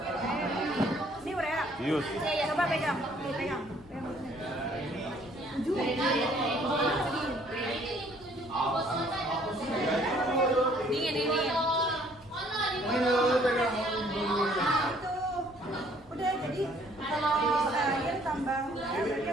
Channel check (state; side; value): normal; both; correlation 0.61